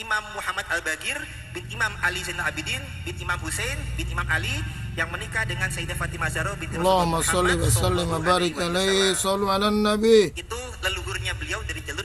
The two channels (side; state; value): both; identical; correlation 1.00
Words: Muhammad Al-Bagir, bin Imam Ali Zainal Abidin, bin Imam Husain, bin Imam Ali, yang menikah dengan Sayyidah Fatimah Zahra binti Allahumma sholli wa sallim wa barik alaihi, shallu ala nabi. Itu leluhurnya beliau dari jalur